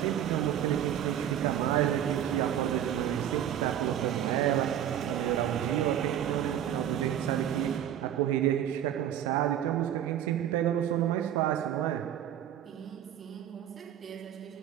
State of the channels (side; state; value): left; quieter; 10.4 dB